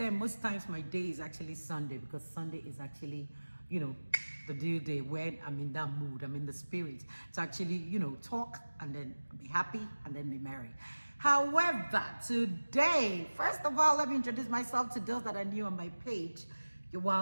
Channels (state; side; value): inverted; both; correlation -1.00